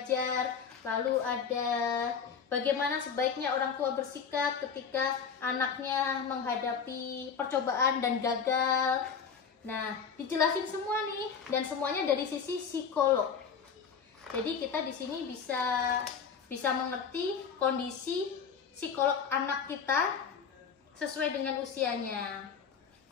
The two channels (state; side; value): quieter; right; 6.5 dB